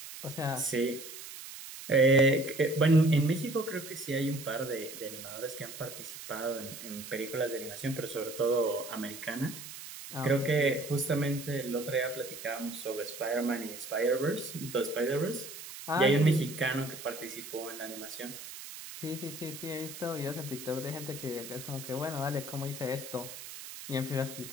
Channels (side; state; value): right; noise; hiss, 12 dB below the sound